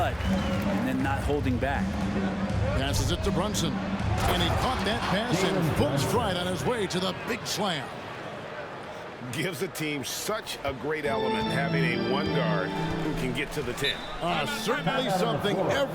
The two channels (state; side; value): identical; both; correlation 1.00